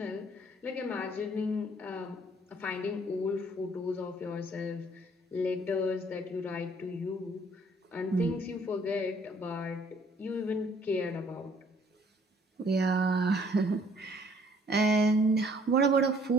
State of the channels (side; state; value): both; normal; correlation 0.60